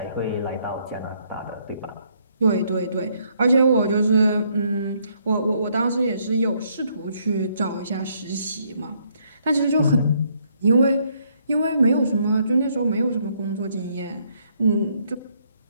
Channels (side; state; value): both; inverted; correlation -0.71